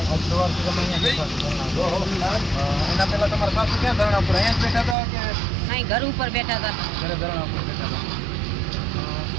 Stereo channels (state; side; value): drops out; left; at 5.0 s